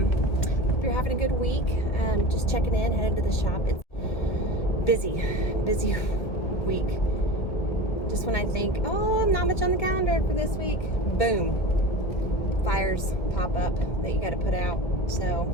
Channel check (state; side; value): late; right; 1.9 ms